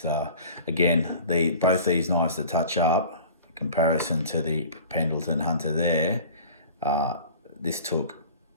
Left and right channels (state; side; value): inverted; both; correlation -0.42